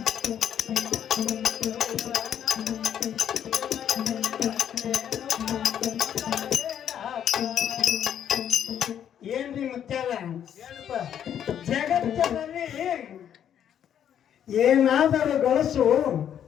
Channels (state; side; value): quieter; right; 9.5 dB